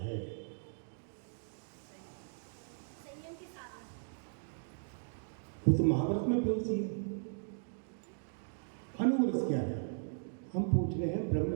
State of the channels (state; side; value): silent; left; digital silence